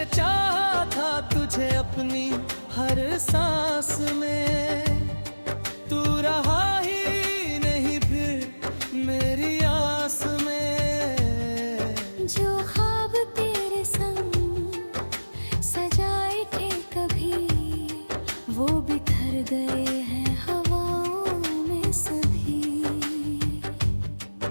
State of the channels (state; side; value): inverted; both; correlation -1.00